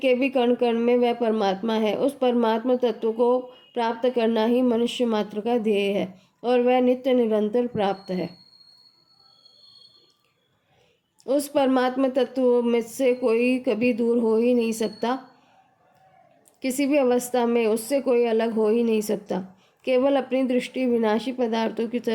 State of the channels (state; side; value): identical; both; correlation 1.00